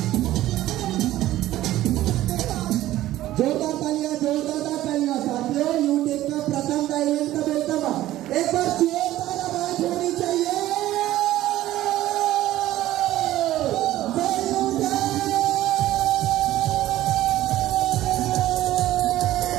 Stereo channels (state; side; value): quieter; left; 14.7 dB